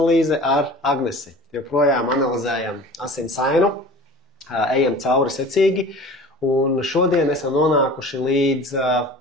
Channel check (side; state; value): both; normal; correlation 0.41